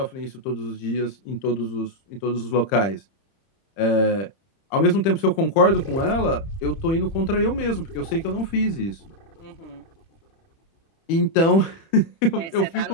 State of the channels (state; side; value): late; right; 30 ms